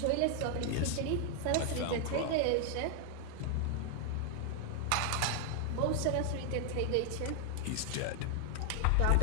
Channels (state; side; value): different; both; correlation 0.00